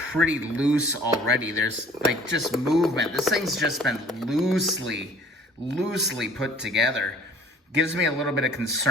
loose already. There's like just movement. This thing's just been loosely put together. Gives me a little bit of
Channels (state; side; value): normal; both; correlation 0.52